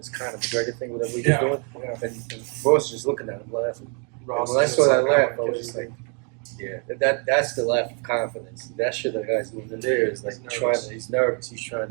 kind of McGregor thing, whatever he was doing. Yeah. And Ross just looking at him laughing. Ross When I is saw that like, laugh, I was just like, yeah, that's the laugh of confidence. That shit that guy's doing in there is like he's nervous. He's trying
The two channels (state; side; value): quieter; left; 37.0 dB